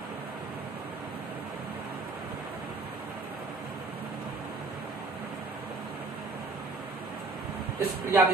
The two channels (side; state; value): left; quieter; 3.5 dB